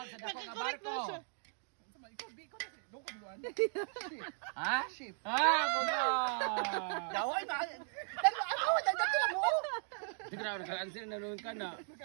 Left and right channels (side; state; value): left; silent; digital silence